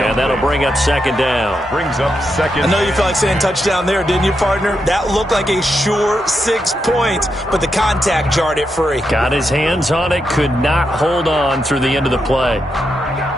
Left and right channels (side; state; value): both; normal; correlation 0.84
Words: that'll bring up 2nd down. Brings up 2nd. I know you felt like saying touchdown there, didn't you, partner? That looked like a sure 6 points, but the contact jarred it free. Got his hands on it, could not hold on through the end of the play.